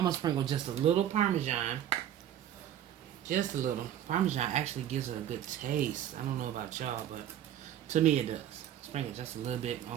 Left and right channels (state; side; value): quieter; left; 10.8 dB